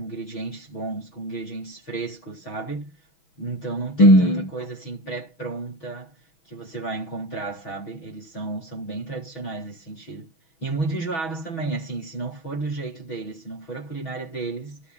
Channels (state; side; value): late; right; 6.2 ms